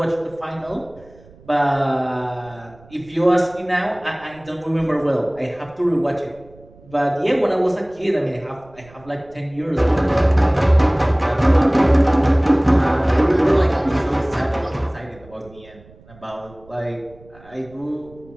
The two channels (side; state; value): right; noise; rumble, 25 dB below the sound